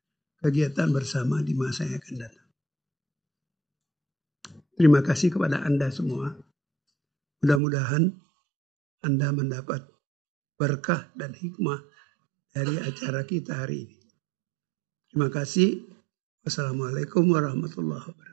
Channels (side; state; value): left; drops out; at 7.6 s